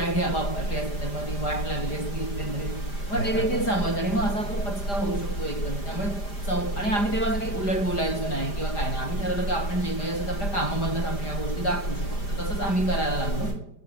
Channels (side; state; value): right; late; 5.0 ms